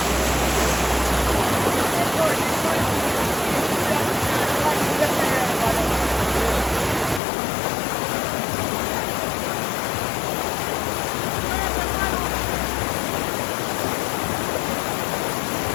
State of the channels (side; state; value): right; drops out; at 7.2 s